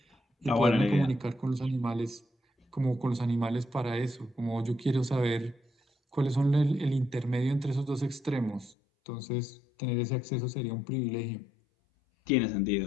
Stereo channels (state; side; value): drops out; right; at 8.8 s